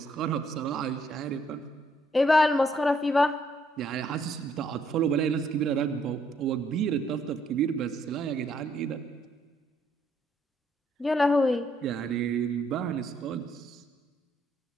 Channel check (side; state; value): both; normal; correlation 0.70